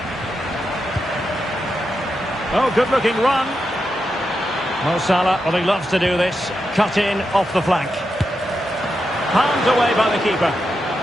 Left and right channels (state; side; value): normal; both; correlation 0.87